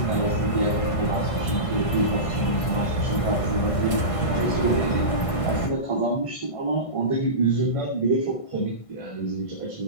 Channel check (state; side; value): late; right; 1.5 ms